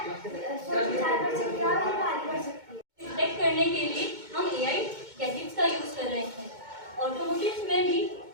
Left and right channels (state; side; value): late; left; 2.2 ms